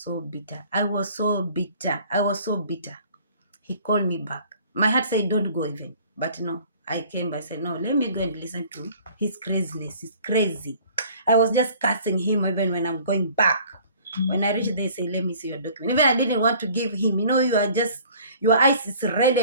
bitter. I was so bitter. He called me back. My heart said, don't go even. But no, I came. I said, no, let me go and listen to his craziness. He's crazy. I was just cursing him even when I'm going back. When I reached there, I say, let me see your document. Even I didn't want to give him. You know, your eyes is red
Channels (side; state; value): both; inverted; correlation -0.51